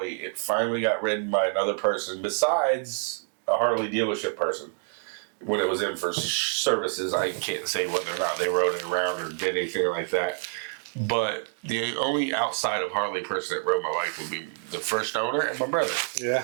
it finally got ridden by another person besides a Harley dealership person. When it was in for services, I can't say whether or not they rode it around or did anything like that. But the only outside of Harley person that rode my bike would be the first owner and my brother. Yeah.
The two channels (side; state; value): left; silent; 60 dB below the other